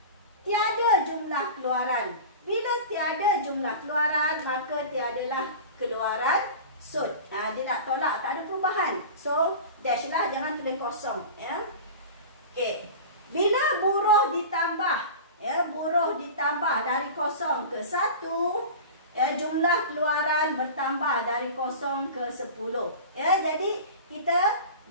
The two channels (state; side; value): inverted; both; correlation -0.33